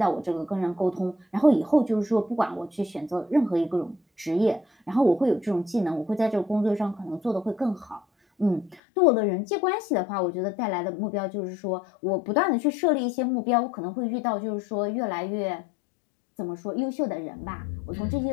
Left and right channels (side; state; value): right; drops out; at 8.8 s